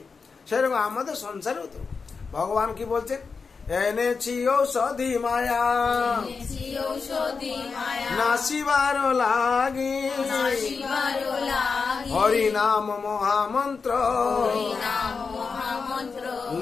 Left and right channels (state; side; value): quieter; right; 5.0 dB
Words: সেরকম আমাদের সংসারেও তো ভগবান কি বলছেন, এনেছি ঔষধি মায়া এনেছি ঔষধি মায়া নাসিবার লাগি নাসিবার লাগি হরি নাম মহামন্ত্র হরি নাম মহামন্ত্র